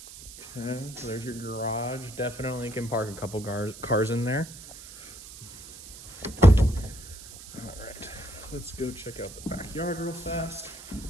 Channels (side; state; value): right; noise; hiss, 15 dB below the sound